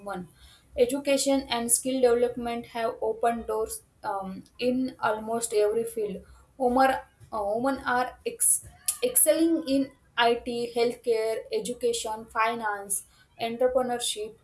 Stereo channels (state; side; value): identical; both; correlation 1.00